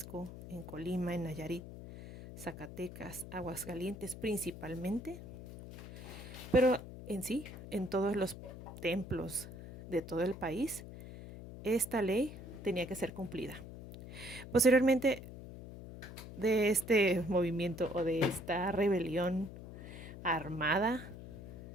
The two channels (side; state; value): left; noise; hum, 12 dB below the sound